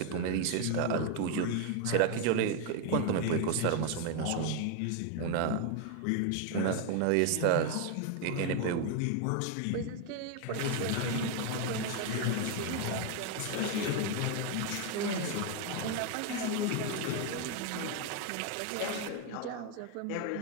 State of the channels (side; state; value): both; different; correlation 0.01